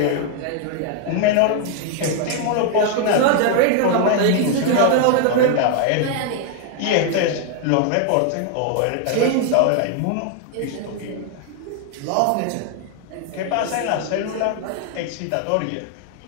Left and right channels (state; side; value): different; both; correlation 0.00